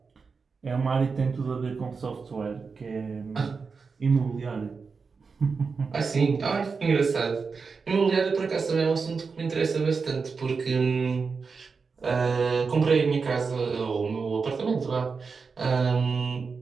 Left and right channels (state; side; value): quieter; left; 5.0 dB